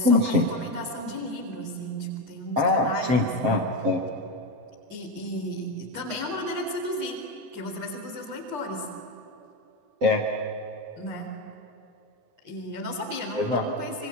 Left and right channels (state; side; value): late; left; 7.3 ms